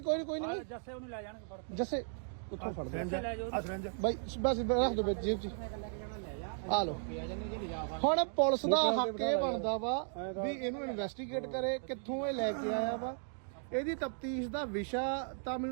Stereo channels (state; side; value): silent; left; digital silence